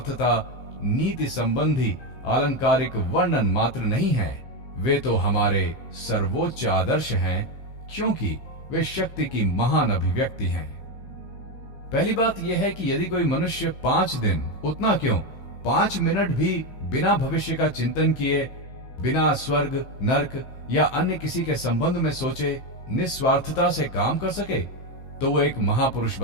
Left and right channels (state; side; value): late; right; 15 ms